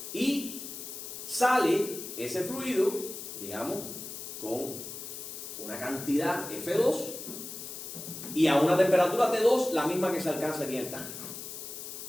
y sale ese fluido, digamos, con una cantidad F2 y a una temperatura T2 la misma que se alcanza aquí en el tanque.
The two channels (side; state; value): left; noise; hiss, 9 dB below the sound